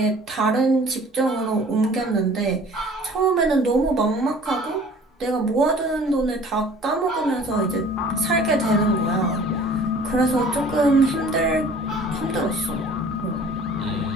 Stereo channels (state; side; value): normal; both; correlation 0.49